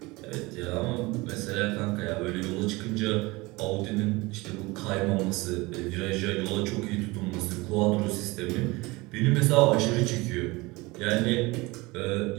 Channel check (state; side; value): quieter; left; 22.8 dB